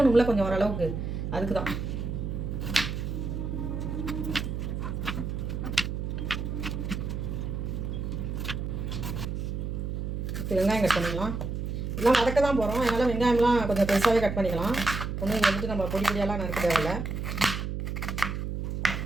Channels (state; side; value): noise; right; hum, 3 dB below the sound